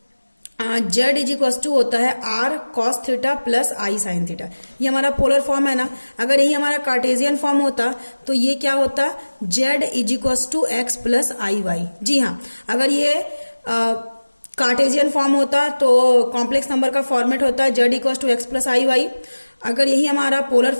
जेड इज इक्वल टू होता है आर कॉस थीटा प्लस आई साइन थीटा। ये हमारा पोलर फॉर्म है ना। अगर यही हमारा कार्टेशियन फॉर्म होता तो ये क्या होता, z is equal to x plus i y. जी हाँ, अगर ये कार्टेशियन फॉर्म होता तो कॉम्प्लेक्स नंबर का फॉर्मेट होता है z equal to x plus i y. अगर यही हमारा पोलर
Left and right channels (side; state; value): both; inverted; correlation -1.00